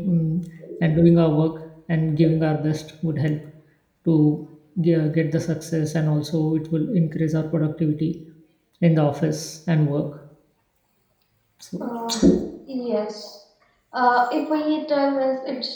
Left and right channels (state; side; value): identical; both; correlation 1.00